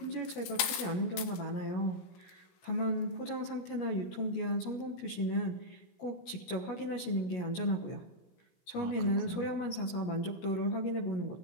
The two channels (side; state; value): right; late; 17 ms